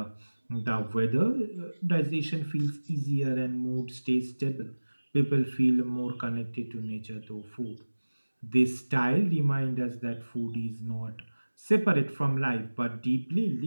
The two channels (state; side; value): inverted; both; correlation -1.00